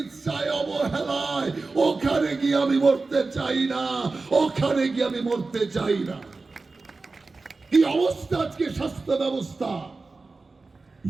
অবহেলায়। ওখানে গিয়ে আমি মরতে চাই না, ওখানে গিয়ে আমি মরতে চাই না। কি অবস্থা আজকে স্বাস্থ্য ব্যবস্থা!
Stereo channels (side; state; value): left; quieter; 3.8 dB